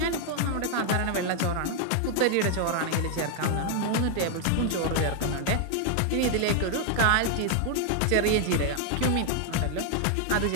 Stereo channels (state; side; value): different; both; correlation 0.00